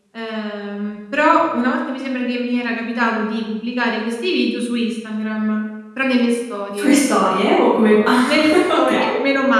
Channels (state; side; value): identical; both; correlation 1.00